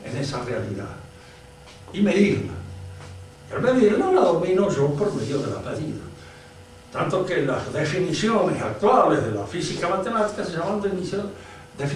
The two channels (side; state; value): both; identical; correlation 1.00